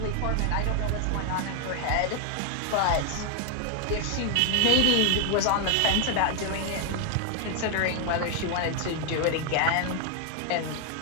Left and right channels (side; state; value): both; different; correlation 0.01